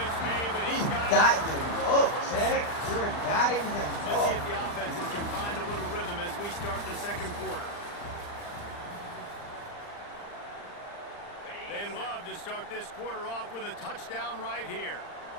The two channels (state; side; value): late; right; 39 ms